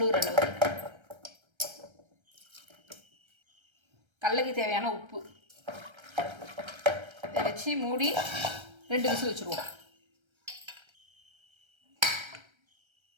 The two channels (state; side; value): late; left; 1.3 ms